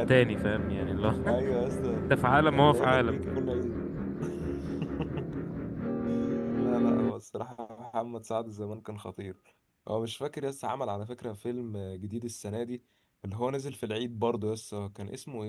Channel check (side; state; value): both; identical; correlation 1.00